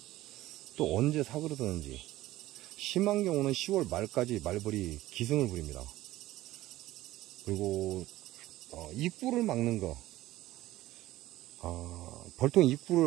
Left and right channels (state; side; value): quieter; left; 16.2 dB